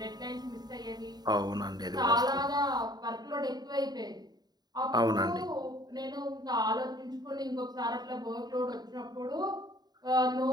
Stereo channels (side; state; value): left; late; 0.20 ms